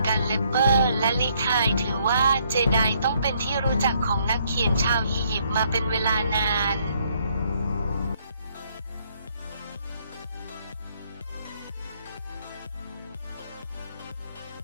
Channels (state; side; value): inverted; both; correlation -0.69